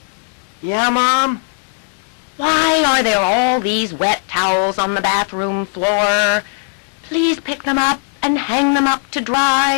Yeah, Mom? Why are there all these wet towels on the bathroom floor? Please pick them up and hang them up to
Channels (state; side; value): silent; right; digital silence